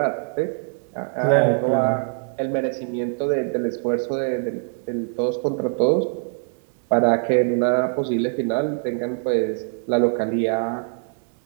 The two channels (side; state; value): left; silent; digital silence